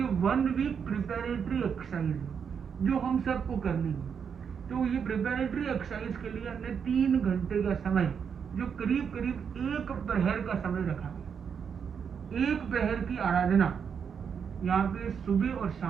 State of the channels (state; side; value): quieter; left; 6.9 dB